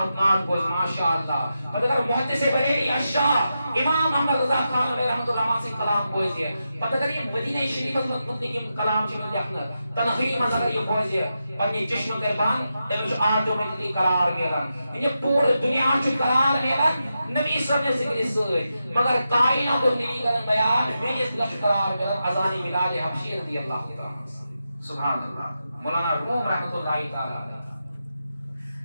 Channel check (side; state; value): both; inverted; correlation -0.88